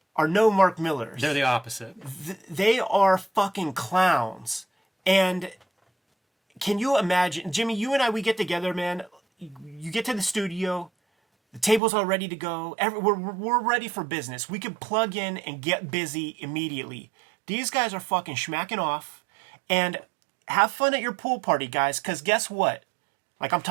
are no Mark Millers. They're the opposite. They are fucking clowns. And can you imagine, Jimmy, you and I, we get together, man. You get to the studio, the table's all ready to go. We're ready for business. We can plug in and get busy immediately. These guys are fucking schmacking off. And have fun at your pool party, guys, because guess what? Like, I'm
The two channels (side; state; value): left; drops out; at 11.8 s